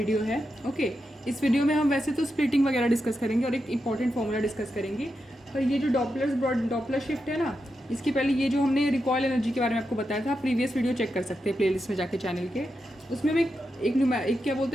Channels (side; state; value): both; normal; correlation 0.87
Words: है। ओके, इस वीडियो में हम वैसे तो स्प्लिटिंग वगैरह डिस्कस करेंगे और एक इंपॉर्टेंट फॉर्मूला डिस्कस करेंगे। पर ये जो डॉपलर शिफ्ट है ना, इसके पहले ये जो हमने रिकॉयल एनर्जी के बारे में आपको बताया था, प्रीवियस वीडियो चेक कर सकते हैं प्लेलिस्ट में जाके चैनल के। उसमें हम एक क्या